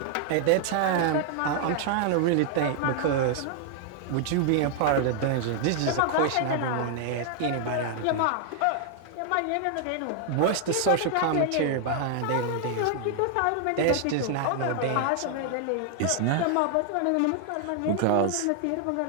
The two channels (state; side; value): different; both; correlation 0.00